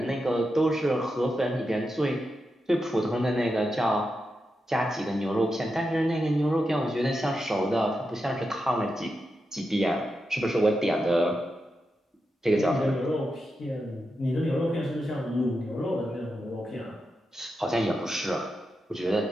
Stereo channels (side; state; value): both; normal; correlation 0.88